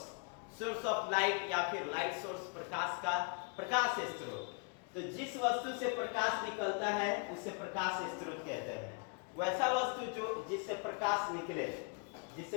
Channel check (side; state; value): right; quieter; 36.5 dB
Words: ऑफ लाइट या फिर लाइट सोर्स, प्रकाश का प्रकाश स्रोत। तो जिस वस्तु से प्रकाश निकलता है उसे प्रकाश स्रोत कहते हैं। वैसा वस्तु जो जिससे प्रकाश निकले,